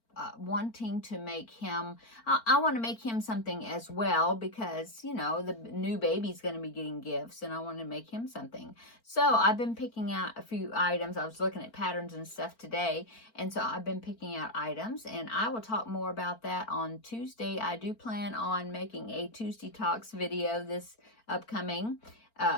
wanting to make him, I want to make him something as well, because, the new baby's going to be getting gifts, and I want to make him something. So I've been picking out a few items. I was looking at patterns and stuff today, and so I've been picking out items, and I will talk more about that on Tuesday. I do plan on making a Tuesday Talks video this upcoming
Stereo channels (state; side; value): late; right; 4.4 ms